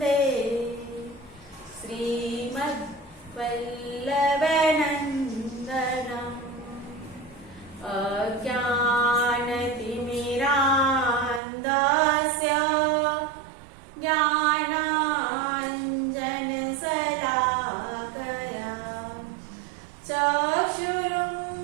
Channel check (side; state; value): left; drops out; at 11.4 s